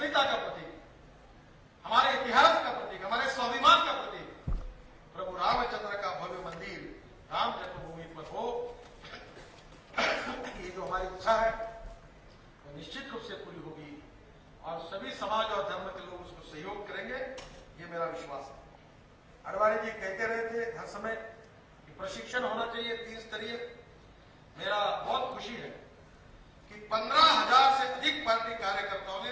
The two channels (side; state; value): both; identical; correlation 1.00